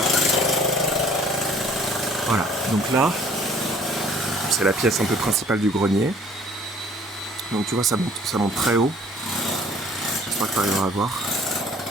Voilà. Donc là, c'est la pièce un peu principale du grenier. Donc tu vois, ça monte très haut. J'espère que tu arriveras à voir.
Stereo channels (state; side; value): normal; both; correlation 0.55